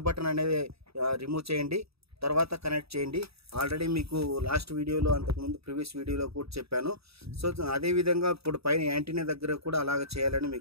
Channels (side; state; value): left; late; 0.77 ms